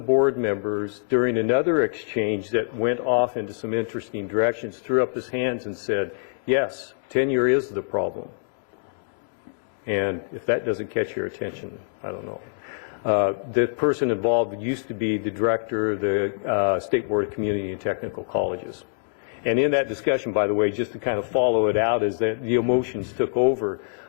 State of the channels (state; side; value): silent; right; digital silence